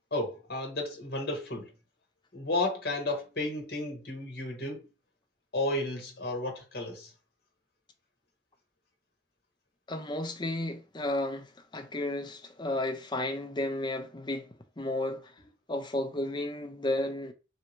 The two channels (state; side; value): normal; both; correlation 0.32